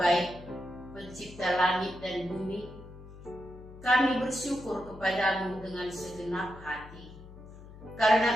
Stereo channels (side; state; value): left; noise; hum, 17 dB below the sound